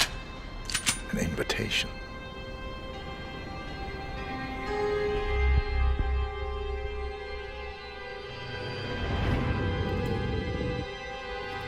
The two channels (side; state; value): both; identical; correlation 1.00